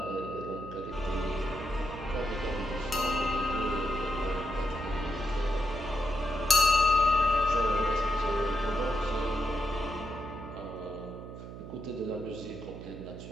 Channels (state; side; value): noise; right; hum, 11 dB below the sound